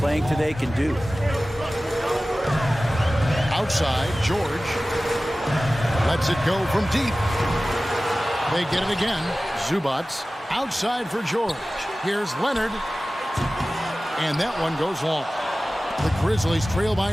today can do. Outside, George. Lets it go from deep. They get it again. Zubac. Outside for George. Here's Leonard. And that one goes long. The Grizzlies trail by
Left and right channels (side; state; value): both; normal; correlation 0.97